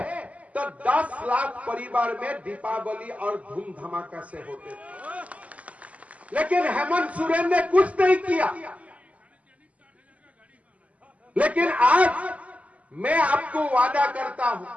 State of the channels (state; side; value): late; left; 0.069 ms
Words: तो 10 लाख परिवार में दीपावली और धूम धमाका से होते थे। लेकिन हेमंत सोरेन ने कुछ नहीं किया। लेकिन आज मैं आपको वादा करता हूं,